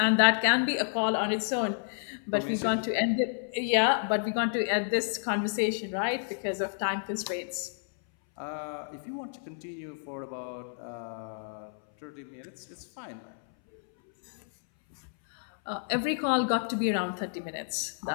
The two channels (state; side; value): silent; right; 58 dB below the other